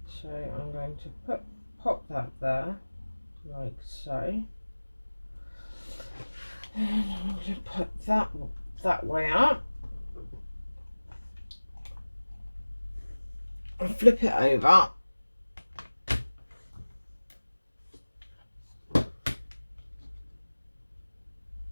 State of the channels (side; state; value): both; inverted; correlation -1.00